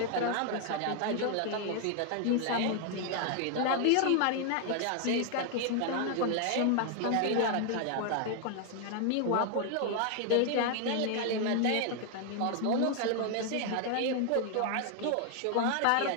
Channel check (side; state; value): both; different; correlation 0.00